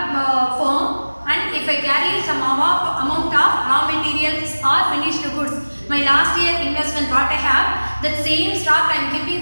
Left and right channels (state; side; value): inverted; both; correlation -1.00